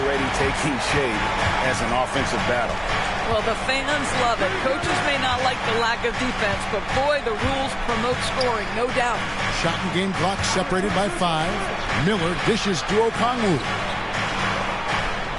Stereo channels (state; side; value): identical; both; correlation 1.00